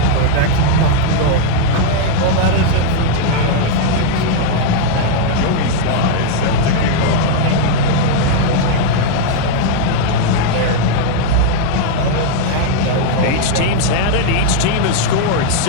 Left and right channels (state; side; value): different; both; correlation 0.00